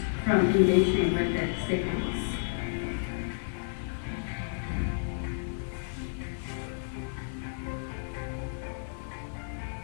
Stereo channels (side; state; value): right; silent; digital silence